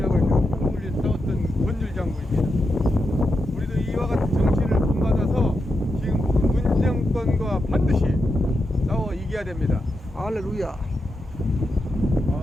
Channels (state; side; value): normal; both; correlation 0.87